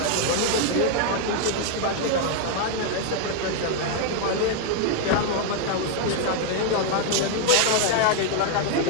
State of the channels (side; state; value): both; different; correlation 0.00